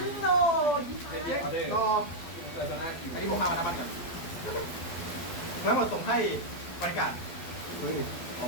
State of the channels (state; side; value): late; right; 12 ms